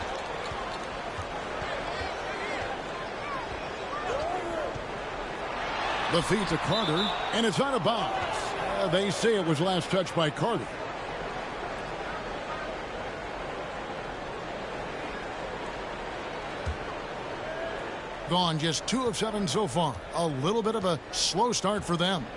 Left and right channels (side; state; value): both; identical; correlation 1.00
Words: The feed to Carter, and it's out of bounds. They say it was last touched by Carter. Gone just 2 of 7 so far. A little bit of a slow start for them.